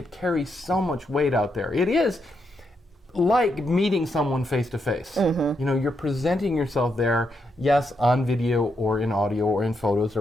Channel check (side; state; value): both; normal; correlation 0.81